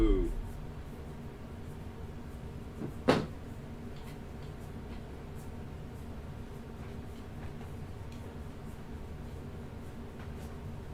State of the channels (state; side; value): identical; both; correlation 1.00